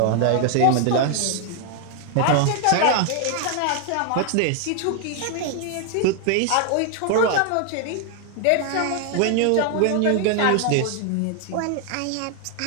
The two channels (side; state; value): both; different; correlation 0.00